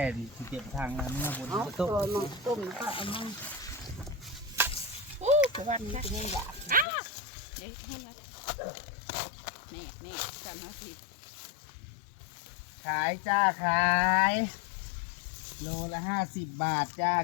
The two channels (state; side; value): drops out; right; at 6.9 s